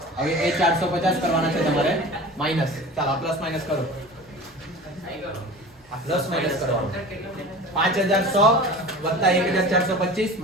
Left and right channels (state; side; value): normal; both; correlation 0.37